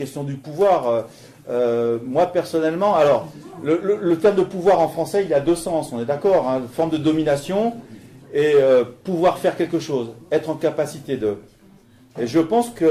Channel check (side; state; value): both; identical; correlation 1.00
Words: du pouvoir. Moi personnellement, alors le terme de pouvoir en français, il a deux sens, on est d'accord, hein, forme de domination et pouvoir faire quelque chose, être en capacité de. Et je pense